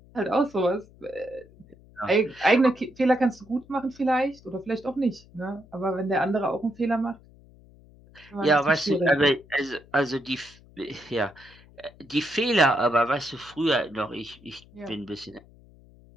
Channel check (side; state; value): left; noise; hum, 25 dB below the sound